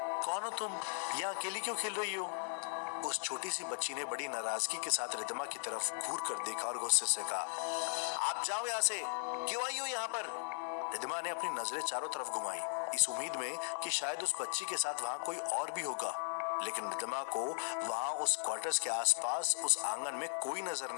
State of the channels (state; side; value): silent; right; digital silence